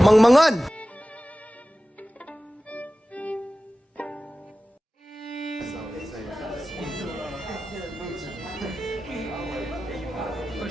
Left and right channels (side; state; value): both; normal; correlation 0.96